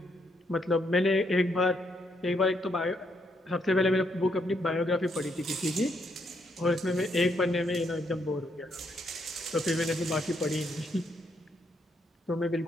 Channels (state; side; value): normal; both; correlation 0.75